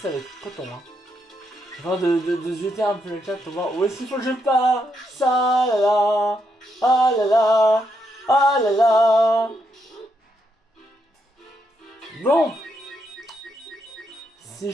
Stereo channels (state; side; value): normal; both; correlation 0.79